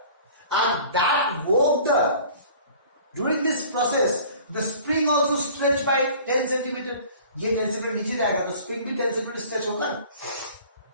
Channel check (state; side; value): inverted; both; correlation -0.47